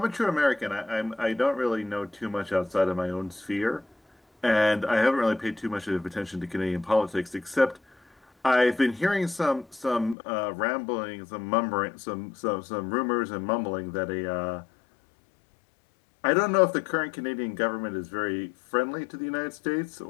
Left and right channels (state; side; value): drops out; right; at 10.2 s